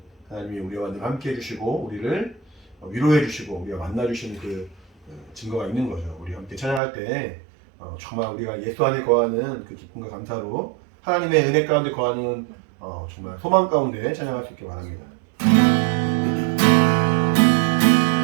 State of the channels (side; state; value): left; drops out; at 6.8 s